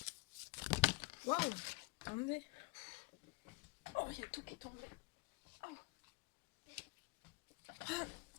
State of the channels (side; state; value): right; quieter; 27.2 dB